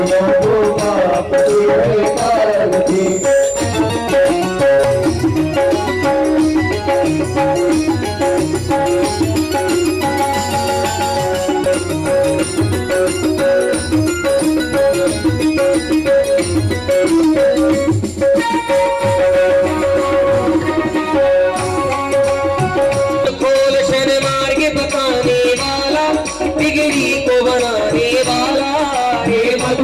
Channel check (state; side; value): identical; both; correlation 1.00